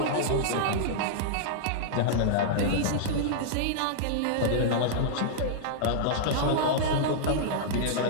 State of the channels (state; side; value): different; both; correlation -0.02